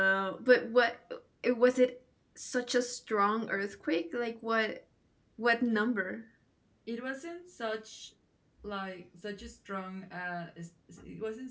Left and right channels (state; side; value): identical; both; correlation 1.00